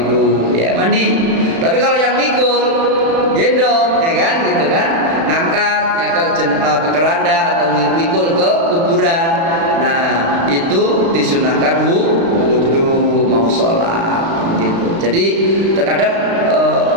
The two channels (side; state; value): left; late; 36 ms